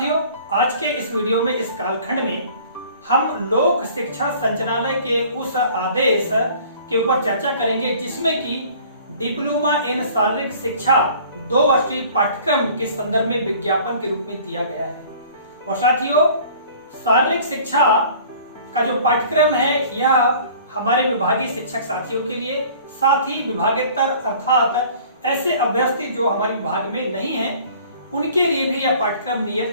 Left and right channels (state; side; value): inverted; both; correlation -0.50